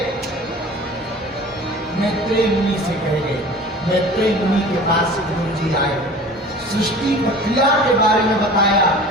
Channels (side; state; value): both; normal; correlation 0.42